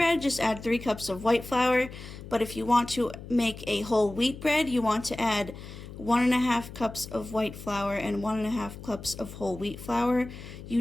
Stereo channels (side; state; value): left; noise; hum, 13 dB below the sound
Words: just add 3 cups of white flour. But if you want to make a whole wheat bread, you want to add 1.5 cups of white flour and 1.5 cups of whole wheat flour.